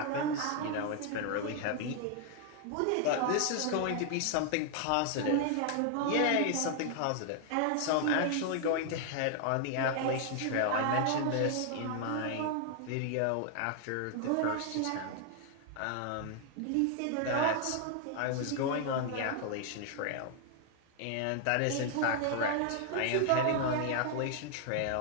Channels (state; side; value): different; both; correlation 0.00